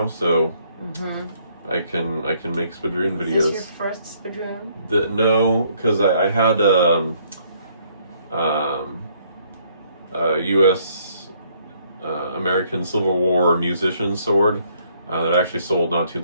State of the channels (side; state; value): both; inverted; correlation -0.67